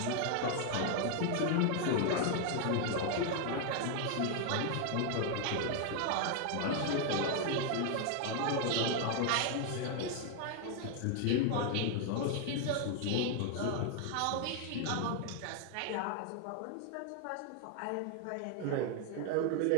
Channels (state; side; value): different; both; correlation 0.00